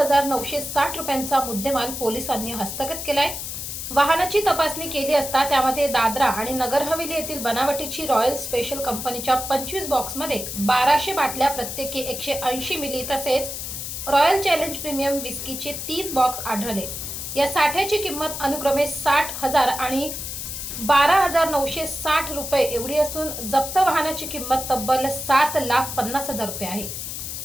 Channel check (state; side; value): noise; left; hiss, 6 dB below the sound